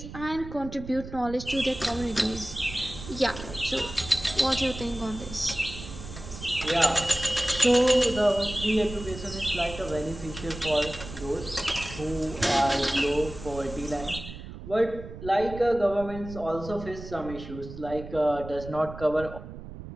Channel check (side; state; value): right; noise; rumble, 12 dB below the sound